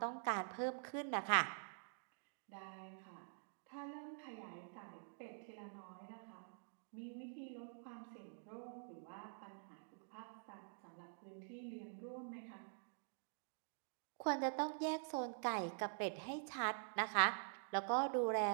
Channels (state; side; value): silent; left; digital silence